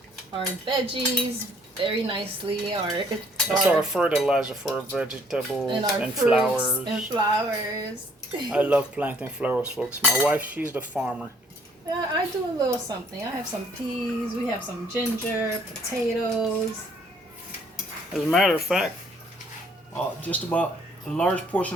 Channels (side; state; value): both; normal; correlation 0.62